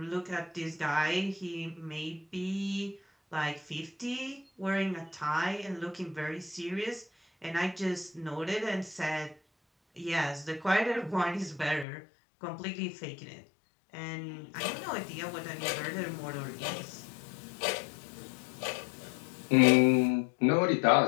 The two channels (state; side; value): drops out; right; at 11.9 s